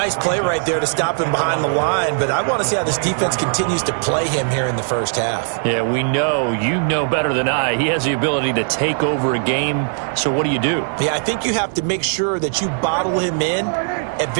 play right there to stop him behind the line, but I want to see how this defense continues to play him here in the first half. Yeah, we know. You know better than I. He has the ability to take over a game, so what do? Yeah, I think you have to make sure that you bottle him in at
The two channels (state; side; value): silent; left; digital silence